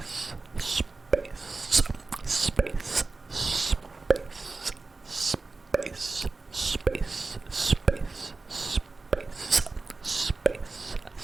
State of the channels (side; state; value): left; quieter; 3.7 dB